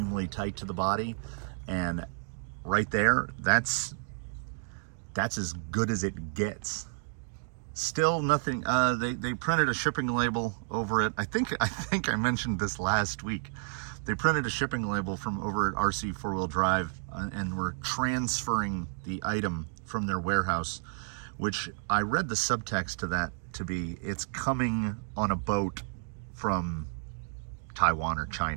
tight to the body, and right there, that's as good as it gets. Still nothing. They printed a shipping label over it. I think I mentioned this last week. They printed a shipping label from over at RC 4-Wheel Drive, and were transferring the item from their warehouse, which I read the subtext to that to be, it's coming on a boat from Taiwan or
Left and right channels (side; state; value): left; silent; digital silence